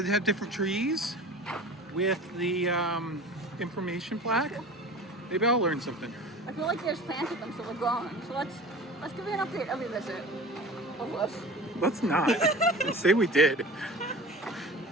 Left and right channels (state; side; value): normal; both; correlation 0.38